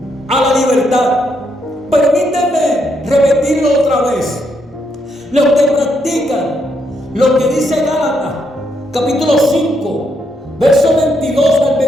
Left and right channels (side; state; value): both; normal; correlation 0.77